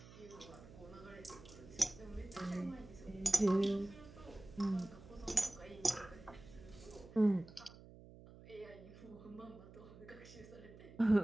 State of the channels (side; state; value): right; noise; hum, 18 dB below the sound